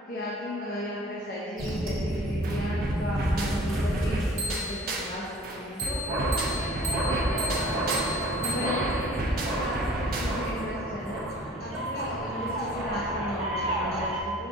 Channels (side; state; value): both; normal; correlation 0.48